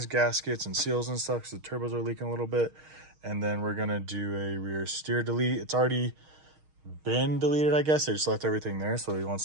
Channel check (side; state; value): left; late; 6.4 ms